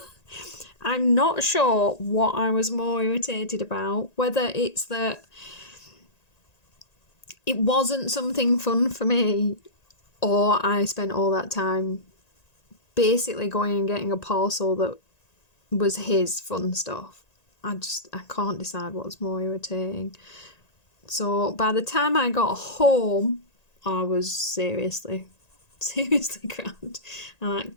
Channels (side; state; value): right; late; 1.9 ms